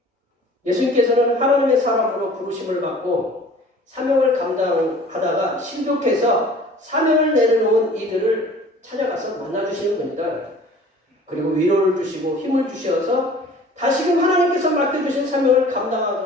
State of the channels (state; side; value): normal; both; correlation 0.48